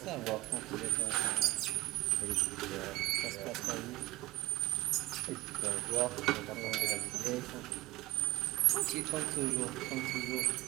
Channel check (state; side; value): quieter; left; 18.6 dB